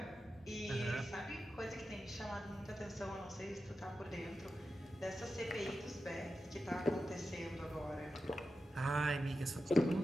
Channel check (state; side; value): normal; both; correlation 0.91